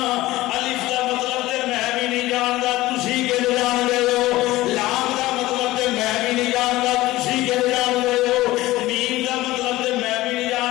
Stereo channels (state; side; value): quieter; right; 17.6 dB